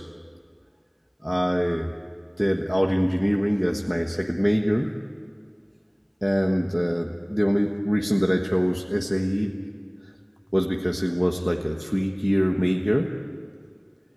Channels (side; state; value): both; identical; correlation 1.00